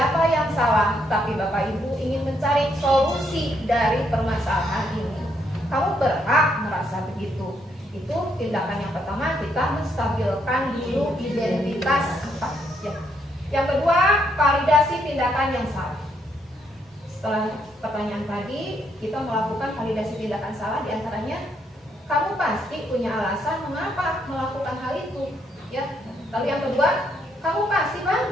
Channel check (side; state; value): both; normal; correlation 0.74